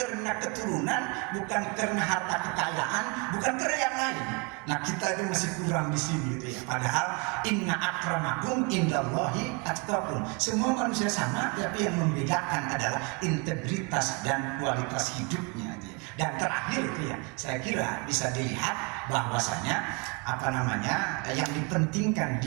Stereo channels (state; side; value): quieter; left; 29.7 dB